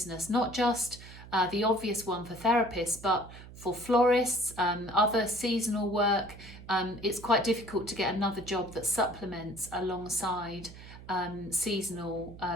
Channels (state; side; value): noise; right; hum, 16 dB below the sound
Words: not just the obvious one for therapists, but for florists, other seasonal work, it's quite difficult to get another job that supplements alongside seasonal